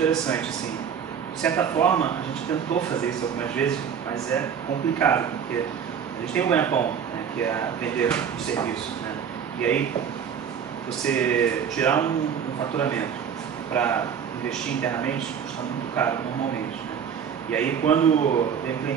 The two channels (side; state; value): left; quieter; 7.7 dB